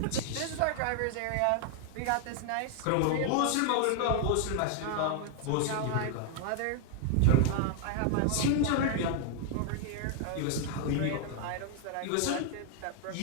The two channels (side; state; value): both; different; correlation 0.00